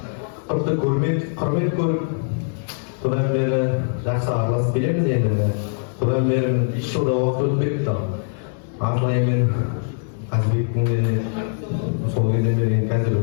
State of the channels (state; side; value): silent; right; digital silence